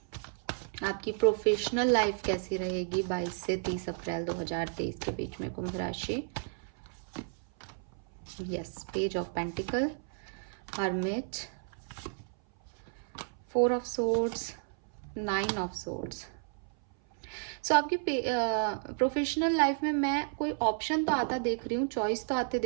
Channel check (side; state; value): left; silent; 56 dB below the other